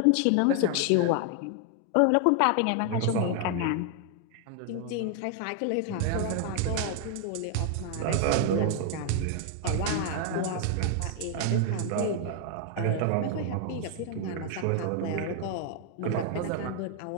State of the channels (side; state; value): both; different; correlation 0.00